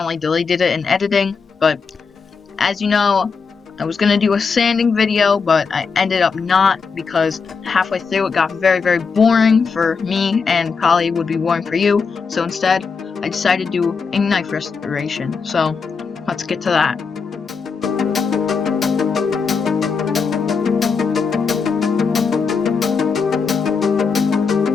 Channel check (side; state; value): right; quieter; 5.3 dB